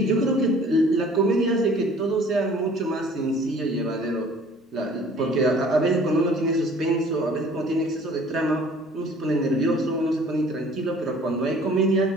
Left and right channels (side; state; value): both; normal; correlation 0.52